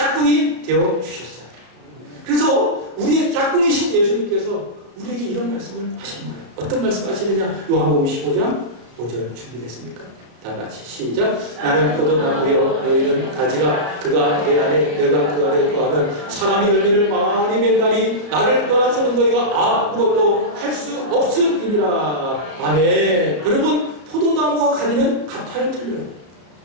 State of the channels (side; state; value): left; late; 33 ms